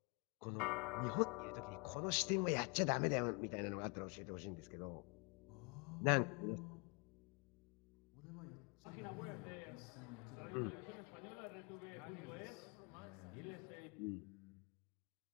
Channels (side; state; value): right; quieter; 32.7 dB